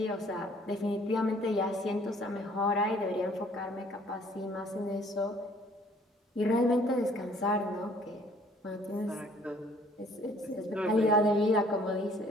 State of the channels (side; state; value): both; normal; correlation 0.58